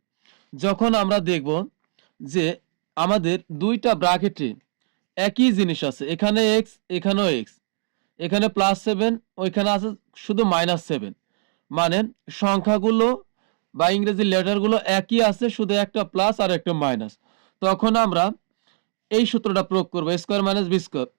যখন আমরা দেখব যে আমাদের 2টা ব্র্যাকেটে একই জিনিস আছে, এখানে x এখানেও x, এখানে প্লাস 7 ওইখানে আছে শুধু মাইনাস 7, মানে সংখ্যাগুলো বা ইংরেজি লেটারগুলো একই আছে, শুধু একটা প্লাস আর একটা মাইনাস। তখন আমরা এই সূত্রটা প্রয়োগ করবো, স্কোয়ার মাইনাস বি স্কোয়ার,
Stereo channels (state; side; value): silent; left; digital silence